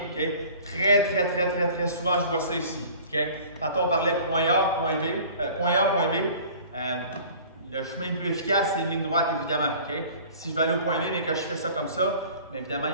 okay? Très souvent, je vois ça ici. Okay? Tantôt, on parlait point A, point B. Le chemin le plus efficace, c'est une ligne droite, évidemment. Okay? Si je vais aller au point B, mais que je fais ça comme ça, bien évidemment, il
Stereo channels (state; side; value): inverted; both; correlation -0.46